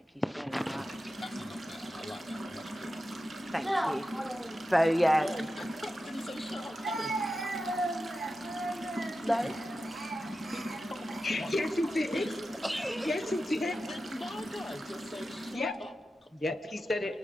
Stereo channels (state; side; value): normal; both; correlation 0.91